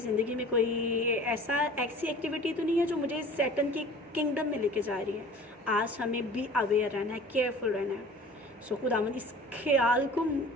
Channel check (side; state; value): both; normal; correlation 0.44